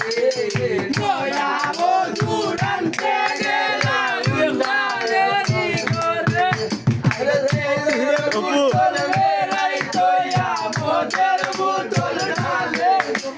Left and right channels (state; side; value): identical; both; correlation 1.00